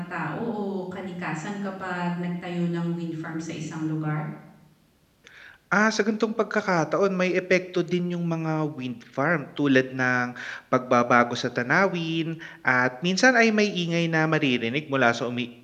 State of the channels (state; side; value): identical; both; correlation 1.00